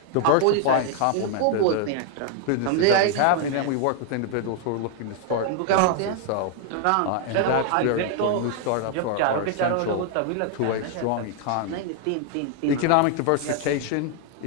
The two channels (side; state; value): both; different; correlation 0.00